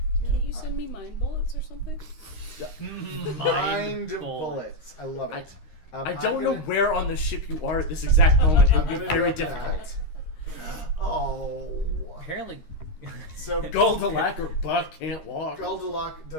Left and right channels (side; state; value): right; late; 13 ms